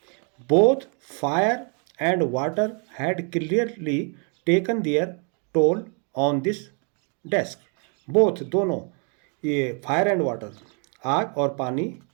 Both fire and water had clearly taken their toll on this desk. Both, दोनों, ये फायर एंड वाटर, आग और पानी,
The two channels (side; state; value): left; quieter; 38.3 dB